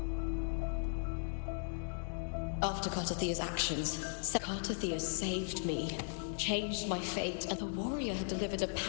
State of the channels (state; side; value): silent; right; digital silence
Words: After Cartathea's actions, Cartathea saved me, changed my fate, and the warrior had delivered a